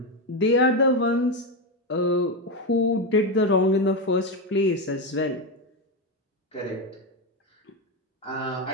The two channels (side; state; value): both; normal; correlation 0.10